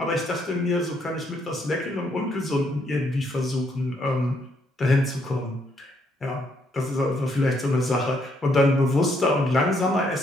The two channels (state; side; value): normal; both; correlation 0.72